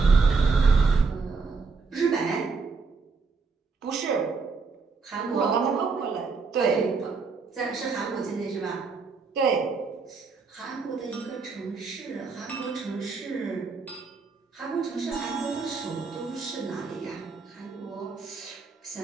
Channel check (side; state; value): left; quieter; 4.7 dB